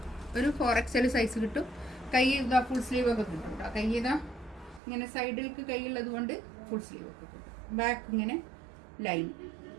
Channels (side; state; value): left; drops out; at 4.8 s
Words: ഒരു 4XL സൈസ് കിട്ടും. കൈ ഇതാ ഫുൾ സ്ലീവ് ഒക്കെ കിട്ടും കേട്ടോ. കൈ ഇതാ ഇങ്ങനെ സൈഡിലേക്ക് കൈയുള്ളത് കൊണ്ട് ഫുൾ സ്ലീവ് ഒക്കെ കിട്ടും. ബാക്ക് ഇങ്ങനെ ലൈൻ.